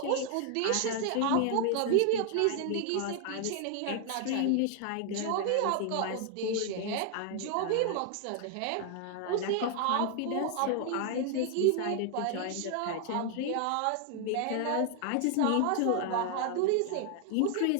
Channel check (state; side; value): different; both; correlation 0.00